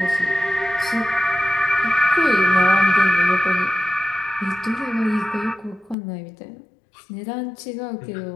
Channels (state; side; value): drops out; right; at 6.0 s